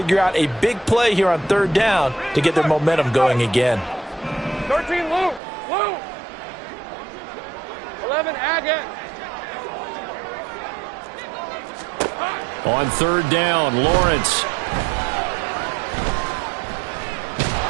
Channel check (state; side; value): drops out; left; at 5.4 s